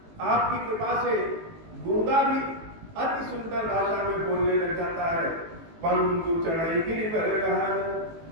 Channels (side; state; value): left; late; 18 ms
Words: आपकी कृपा से गूंगा भी अति सुंदर भाषा में बोलने लग जाता है। पंगु चढ़ाई गिरि पर गहन,